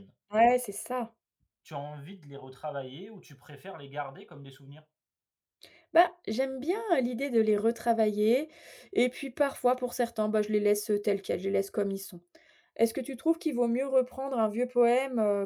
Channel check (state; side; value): identical; both; correlation 1.00